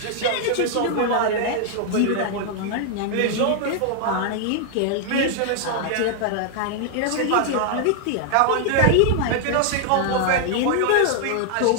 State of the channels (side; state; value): both; different; correlation 0.00